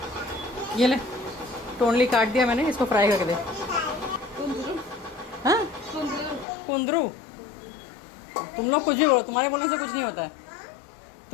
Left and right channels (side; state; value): right; drops out; at 6.5 s